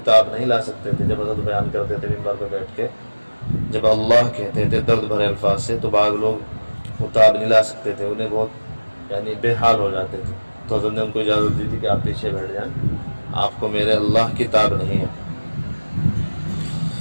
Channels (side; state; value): both; inverted; correlation -1.00